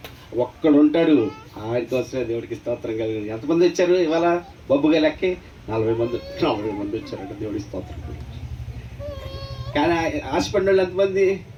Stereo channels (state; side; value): identical; both; correlation 1.00